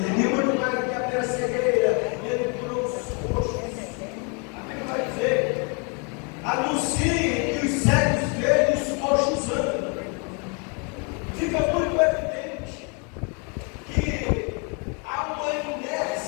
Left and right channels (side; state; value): right; quieter; 35.3 dB